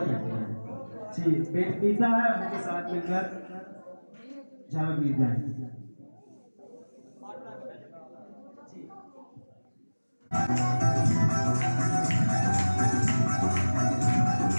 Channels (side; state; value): both; inverted; correlation -1.00